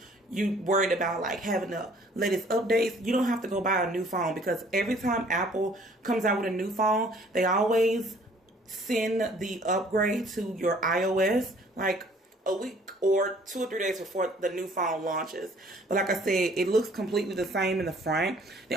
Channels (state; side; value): normal; both; correlation 0.57